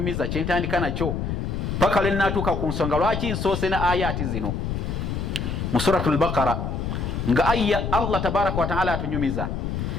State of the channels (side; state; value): left; noise; rumble, 2 dB below the sound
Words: kyentandika nakyo paka lwe natuuka ku nsonga lwaki nsoose na ayati zino mu suratul Baqara nga aya Allah tabaraka wa ta'ala atunyumiza